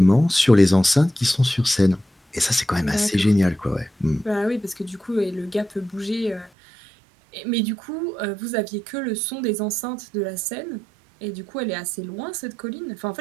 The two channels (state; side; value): drops out; left; at 6.5 s